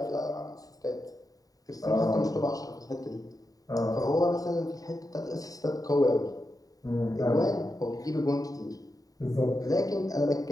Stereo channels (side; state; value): right; late; 0.18 ms